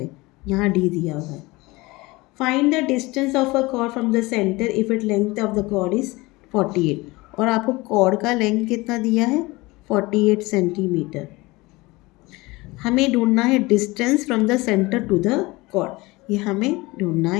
यहाँ D दिया हुआ है. Find the distance of a chord from the centre if it length of the chord is 48. और आपको कॉर्ड का लेंथ कितना दिया है, 48 सेंटीमीटर. हमें ढूंढना है distance from the centre to the chord. ये हमें ढूंढना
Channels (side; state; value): right; quieter; 22.2 dB